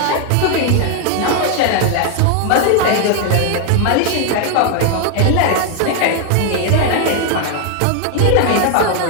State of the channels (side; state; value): both; different; correlation 0.00